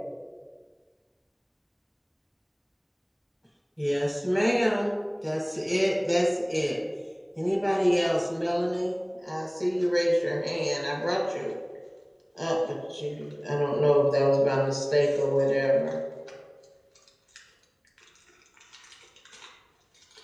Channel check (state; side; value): identical; both; correlation 1.00